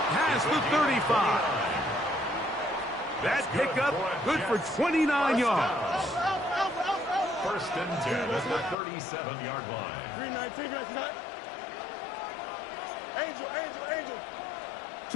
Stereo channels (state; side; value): drops out; right; at 8.8 s